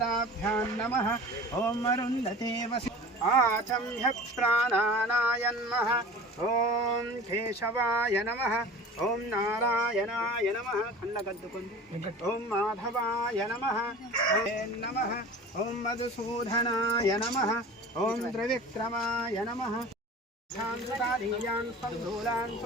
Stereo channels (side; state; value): both; normal; correlation 0.39